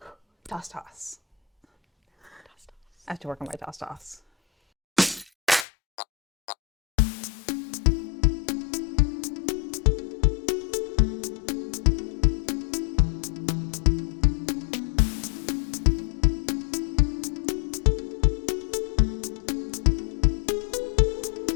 Toss, toss. I have to work on my toss, toss.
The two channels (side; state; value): right; drops out; at 5.7 s